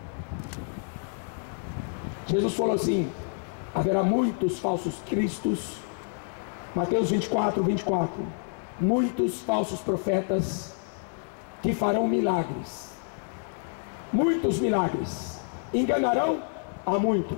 Jesus falou assim: haverá muitos falsos cristos, Mateus 24, 24, muitos falsos profetas que farão milagres, muitos milagres, enganarão a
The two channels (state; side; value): silent; right; 59 dB below the other